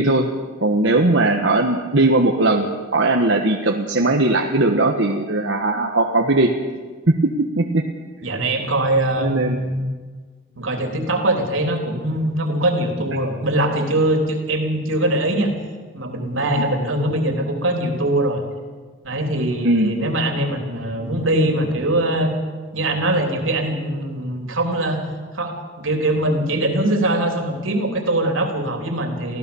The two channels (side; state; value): both; normal; correlation 0.14